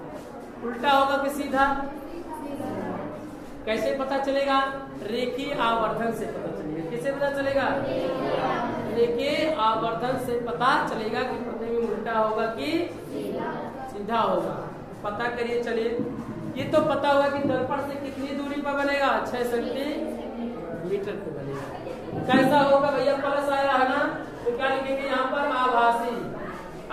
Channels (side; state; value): both; identical; correlation 1.00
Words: उल्टा होगा कि सीधा, कैसे पता चलेगा, रेखीय आवर्धन से पता चलेगा। किससे पता चलेगा, रेखीय आवर्धन से पता चलेगा कि प्रतिबिंब उल्टा होगा कि सीधा होगा। पता करिए, चलिए ये तो पता होगा कि दर्पण से कितनी दूरी पर बनेगा, 6 सेंटीमीटर पे बनेगा। कैसा होगा भैया, प्लस आया है ना, तो क्या लिखेंगे यहाँ पर, आभासी।